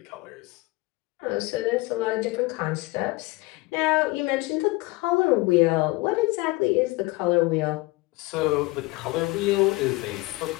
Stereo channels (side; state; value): right; quieter; 22.4 dB